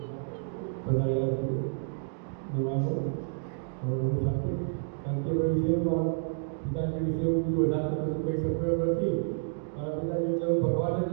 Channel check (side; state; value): left; silent; digital silence